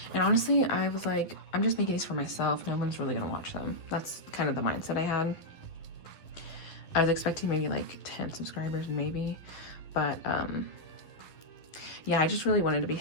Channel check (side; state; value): right; late; 11 ms